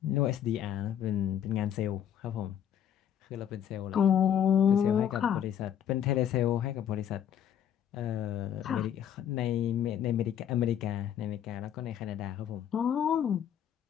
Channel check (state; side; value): quieter; right; 9.5 dB